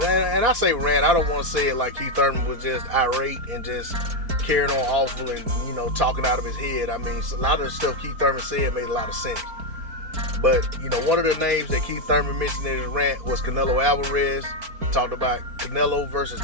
and I say rant, I don't want to say it like Keith Thurman was just irate and just carrying on awful and, talking out of his head. I mean, a lot of the stuff Keith Thurman said made a lot of sense. But, one of the names that Keith Thurman mentioned in his rant was Canelo Alvarez. Talked about Canelo versus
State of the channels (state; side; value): late; left; 4.5 ms